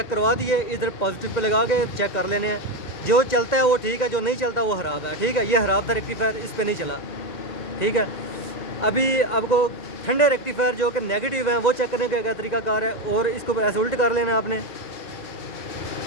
करवा दिए, इधर पॉजिटिव पे लगा के चेक कर लेने हैं। जो चलता है वो ठीक है, जो नहीं चलता वो ख़राब है, ठीक है। ये ख़राब था रेक्टिफायर, इस पर नहीं चला, ठीक है। अभी आपको ठंडे रेक्टिफायर जो कि नेगेटिव हैं वो चेक करने का क्या तरीकाकार है, और इसको ऐसे उल्ट कर लेना आपने,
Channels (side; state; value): right; late; 2.0 ms